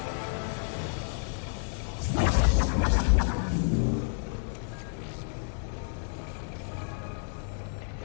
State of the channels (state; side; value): silent; right; digital silence